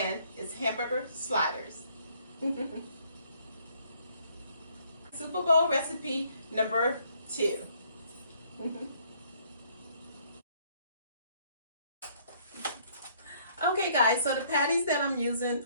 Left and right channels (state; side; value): inverted; both; correlation -0.64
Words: it's hamburger sliders. Super Bowl recipe number 2. Okay guys, so the patties that I'm using